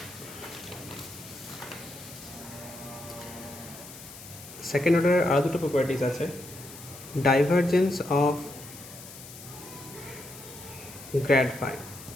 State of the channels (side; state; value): left; noise; hiss, 15 dB below the sound